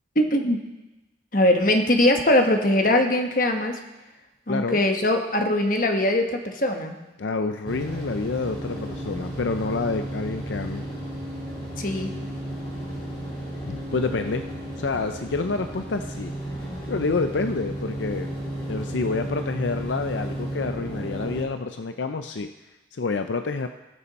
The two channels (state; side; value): normal; both; correlation 0.31